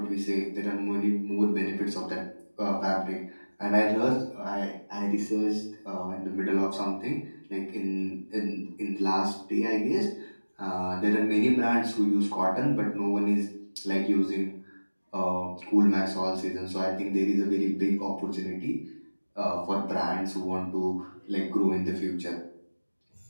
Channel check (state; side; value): inverted; both; correlation -1.00